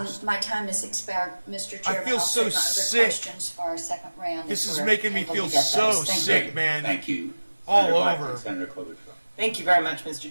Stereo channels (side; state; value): both; inverted; correlation -1.00